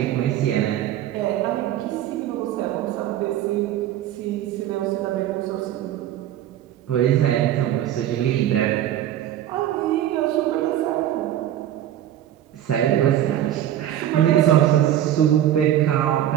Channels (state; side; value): quieter; left; 11.9 dB